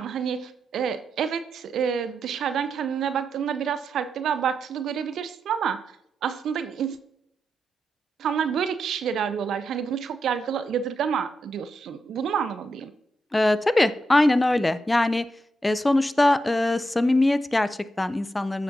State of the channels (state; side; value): normal; both; correlation 0.85